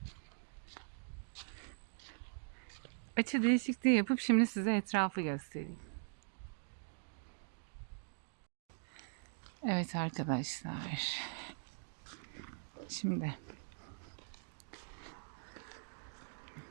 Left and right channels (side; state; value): left; silent; digital silence